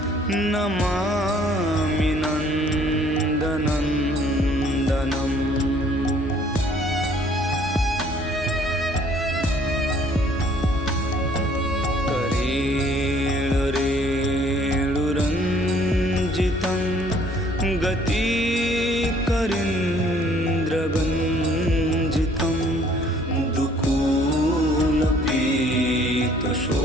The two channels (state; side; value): normal; both; correlation 0.59